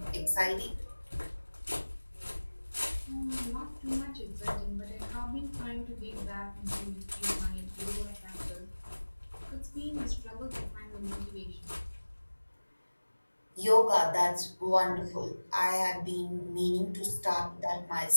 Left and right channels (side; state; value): both; inverted; correlation -1.00